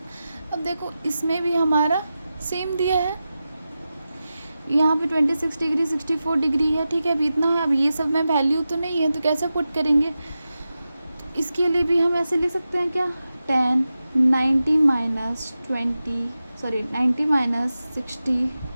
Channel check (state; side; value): inverted; both; correlation -0.93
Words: अब देखो इसमें भी हमारा सेम दिया है, यहाँ पे 26 डिग्री 64 डिग्री है, ठीक है। अभी इतना है, अब ये सब में वैल्यू तो नहीं है तो कैसे पुट करेंगे। इसके लिए भी हम ऐसे ले सकते हैं क्या, tan 90 माइनस